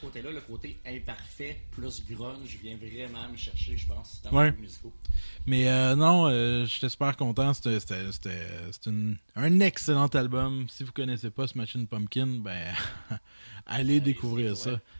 le côté imparfait plus grunge vient vraiment me chercher, je pense, dans les musicaux. Mais non, j'étais super content. C'était un excellent album. Si vous connaissez pas Smashing Pumpkin, ben allez découvrir ça.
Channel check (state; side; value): inverted; both; correlation -1.00